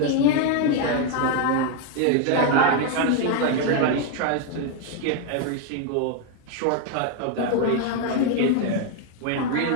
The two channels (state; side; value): different; both; correlation 0.01